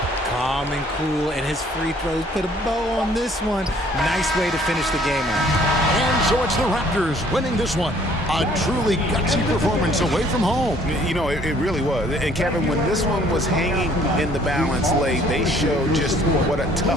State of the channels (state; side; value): normal; both; correlation 0.59